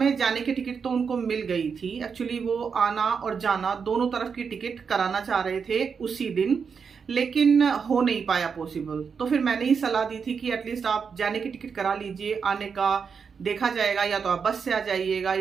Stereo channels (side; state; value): left; quieter; 6.1 dB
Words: जाने की टिकट तो उनको मिल गई थी। एक्चुअली वो आना और जाना दोनों तरफ की टिकट कराना चाह रहे थे उसी दिन, लेकिन हो नहीं पाया पॉसिबल। तो फिर मैंने ही सलाह दी थी कि एटलीस्ट आप जाने की टिकट करा लीजिए, आने का देखा जाएगा, या तो आप बस से आ जाइएगा